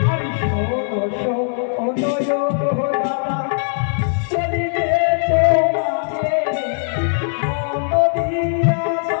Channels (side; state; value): right; silent; 66 dB below the other